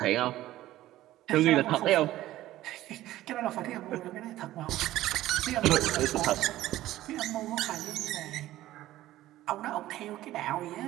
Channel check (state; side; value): quieter; left; 15.0 dB